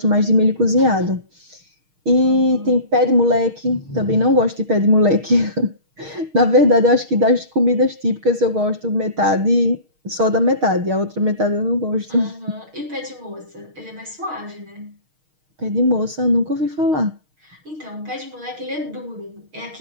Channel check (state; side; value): late; left; 6.4 ms